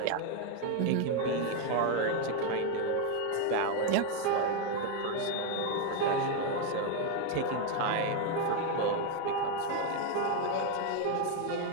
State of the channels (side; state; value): both; different; correlation 0.01